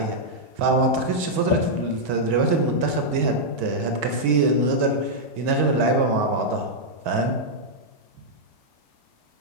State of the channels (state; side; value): late; left; 2.1 ms